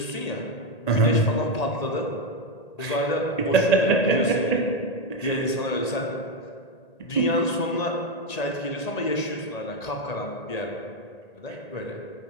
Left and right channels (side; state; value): right; late; 1.8 ms